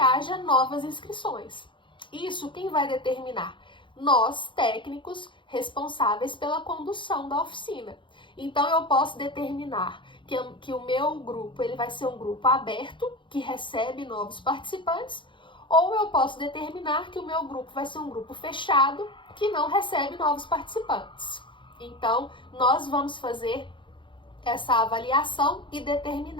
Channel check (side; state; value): right; late; 0.24 ms